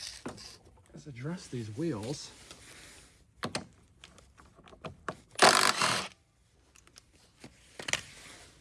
is address these wheels.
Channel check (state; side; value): identical; both; correlation 1.00